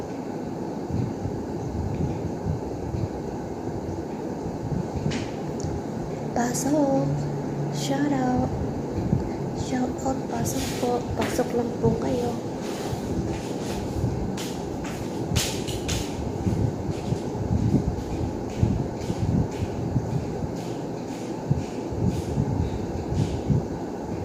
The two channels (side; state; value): both; identical; correlation 1.00